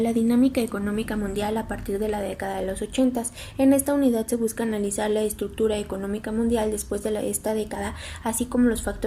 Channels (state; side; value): identical; both; correlation 1.00